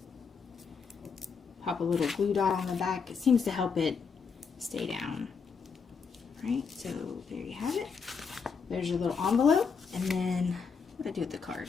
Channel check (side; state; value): right; quieter; 5.7 dB